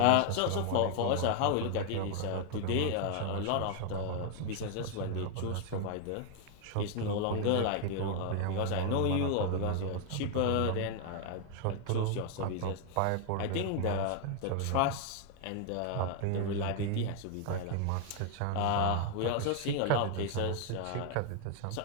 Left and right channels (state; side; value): different; both; correlation 0.00